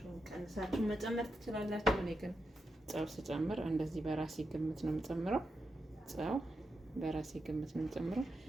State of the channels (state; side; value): normal; both; correlation 0.87